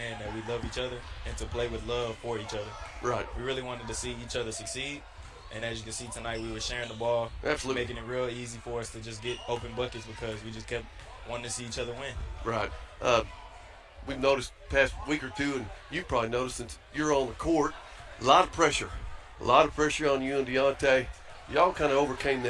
that we love each other and to play with love for each other. Right. We really wanted to see each other succeed. And as you can see tonight, we were sharing the ball, Absolutely, making it real easy for us to just get open buckets because we just kept wanting to see each other win. Right. We've noticed past week or two, and you've probably noticed since you're on the court, a lot of pressure on you and Deontay. Y'all kind of overcame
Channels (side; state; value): both; identical; correlation 1.00